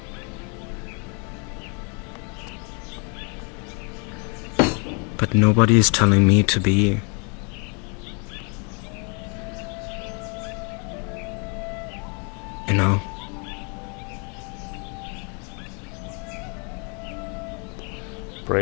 But nobody is telling me to be. You know?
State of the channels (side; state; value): right; quieter; 36.2 dB